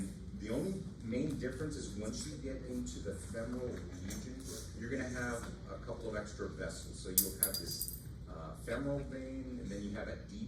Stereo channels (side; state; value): both; identical; correlation 1.00